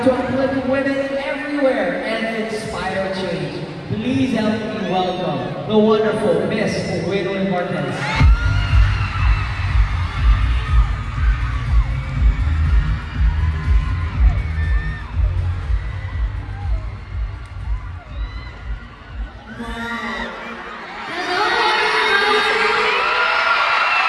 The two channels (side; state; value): both; identical; correlation 1.00